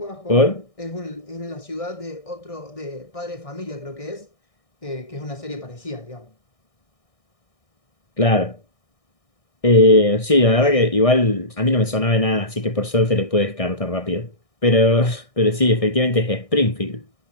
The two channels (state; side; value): late; right; 1.6 ms